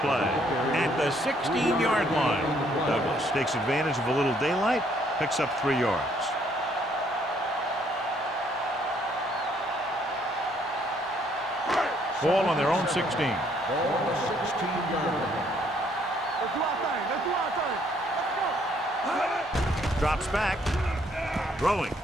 play at the 16-yard line. Douglas takes advantage of a little daylight, picks up 3 yards. Ball on their own 16. Ball on the 16-yard line. Let's do our thing. Let's do our thing. Let's go. Drops back. Throwing.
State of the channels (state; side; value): normal; both; correlation 0.67